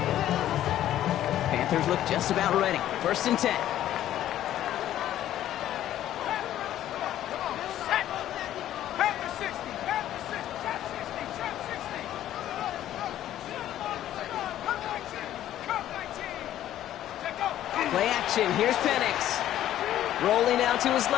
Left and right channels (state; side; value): quieter; right; 12.4 dB